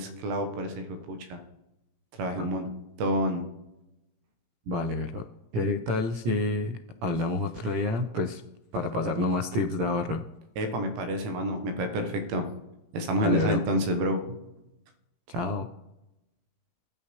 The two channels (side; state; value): left; late; 18 ms